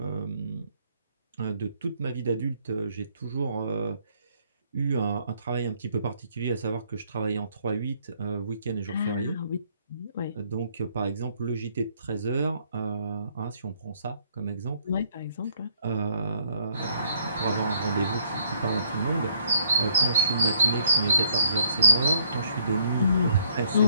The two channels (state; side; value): inverted; both; correlation -0.68